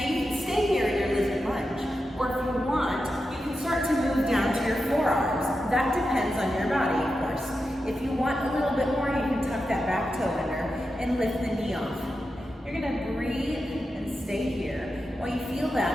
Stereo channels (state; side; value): normal; both; correlation 0.89